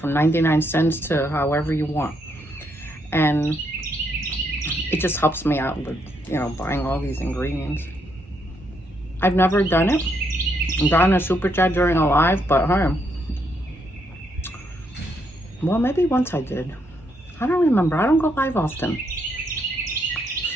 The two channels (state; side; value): normal; both; correlation 0.76